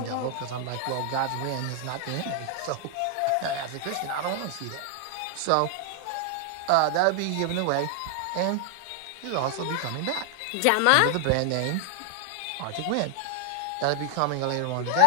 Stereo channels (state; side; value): different; both; correlation 0.00